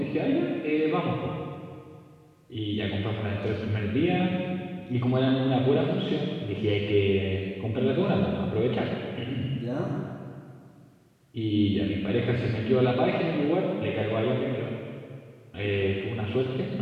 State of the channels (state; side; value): identical; both; correlation 1.00